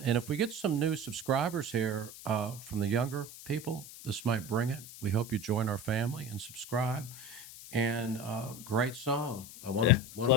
and if we get some new subscribers here from the younger people, this might bring it. We hope you join our family and subscribe. And great song. I want Yeah, to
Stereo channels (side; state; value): left; noise; hiss, 15 dB below the sound